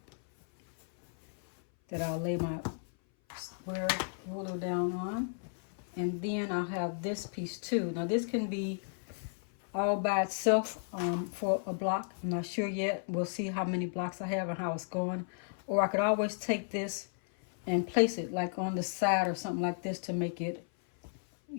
that I'll lay my square ruler down on, and then I'll have this piece too. Now this can be all by itself for a block. I'm not sure yet. We'll see how many blocks I have and how it's going. Or I could always take this and place it like on the side or something like this to make it,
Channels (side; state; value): right; silent; 55 dB below the other